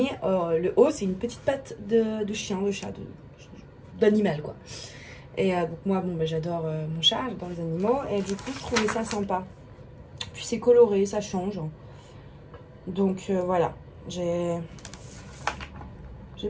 le haut, c'est une petite patte de chien, de chat, d'animal, quoi. Et donc moi, bon, bah, j'adore mon chat, j'adore les animaux. Et du coup, je trouvais ça sympa. Puis c'est coloré, ça change. Donc voilà, j'ai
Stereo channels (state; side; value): identical; both; correlation 1.00